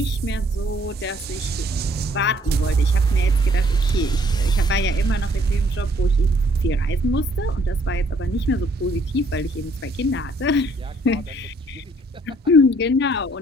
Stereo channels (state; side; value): normal; both; correlation 0.64